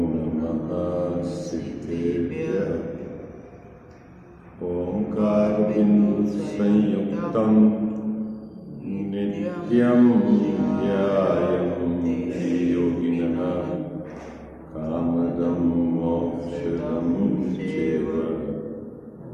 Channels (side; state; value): both; identical; correlation 1.00